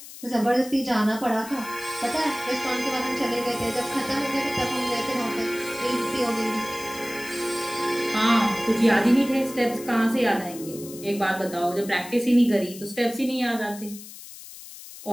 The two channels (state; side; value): noise; left; hiss, 15 dB below the sound